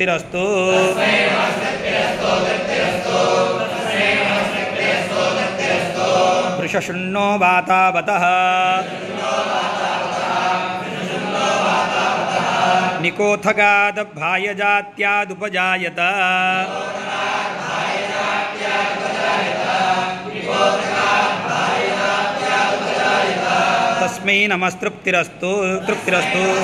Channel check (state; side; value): identical; both; correlation 1.00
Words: वृषशुण्णो वातावतः निकोथगादभायजात्यादुपजायत तस्मै नमस्तृप्तिरस्तु तृप्तिरस्तु